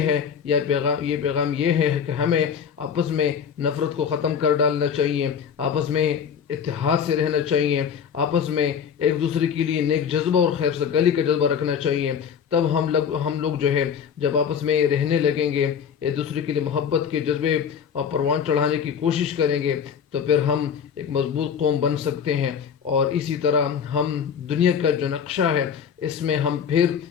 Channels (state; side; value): quieter; right; 7.4 dB